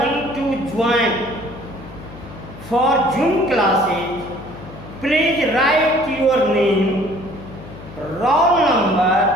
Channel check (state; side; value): noise; left; hum, 16 dB below the sound